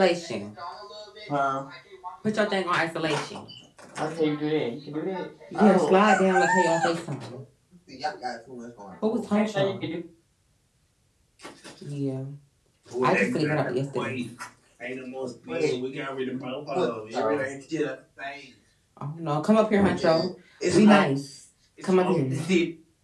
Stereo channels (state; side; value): identical; both; correlation 1.00